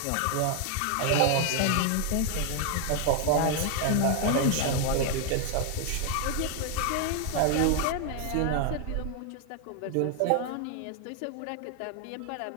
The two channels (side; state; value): both; different; correlation 0.00